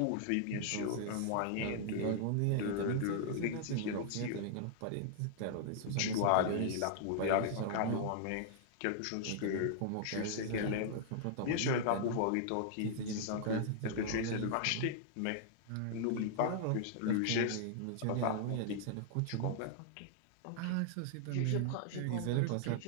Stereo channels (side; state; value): both; different; correlation -0.01